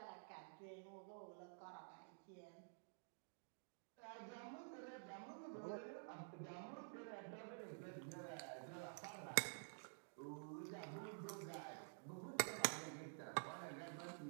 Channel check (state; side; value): silent; left; digital silence